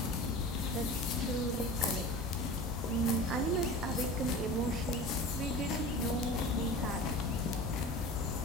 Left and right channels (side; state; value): both; normal; correlation 0.35